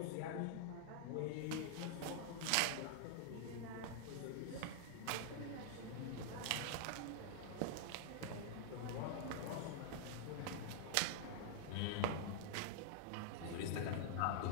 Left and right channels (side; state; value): both; different; correlation -0.01